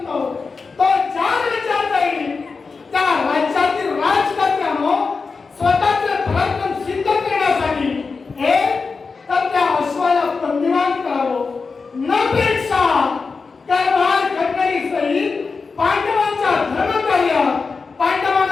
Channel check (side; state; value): right; quieter; 4.6 dB